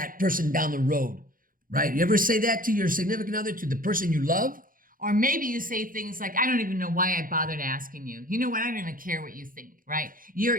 person down the road, right? You ever say that to your significant other, to the person you love? Or maybe you say things like, I don't even know why I bothered asking you. You know what? I don't even care what you think, right?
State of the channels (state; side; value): late; left; 0.40 ms